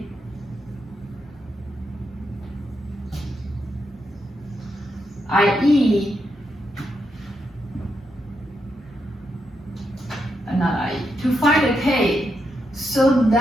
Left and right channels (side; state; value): both; normal; correlation 0.83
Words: i.e., to find the k so